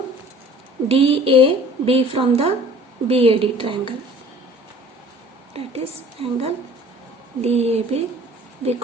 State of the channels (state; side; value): normal; both; correlation 0.49